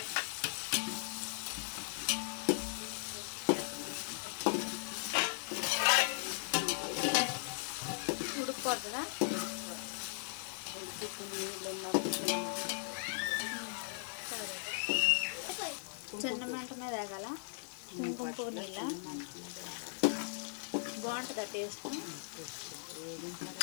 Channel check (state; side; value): silent; right; digital silence